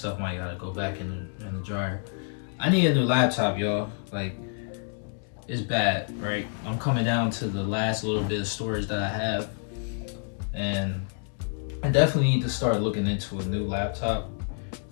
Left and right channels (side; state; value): right; silent; 59 dB below the other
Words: might gotta go back in the dryer. I need a new laptop, y'all. Like, it's bad, right? I'm coming down to the last little bit of storage that I have, and I definitely need to start looking into a new laptop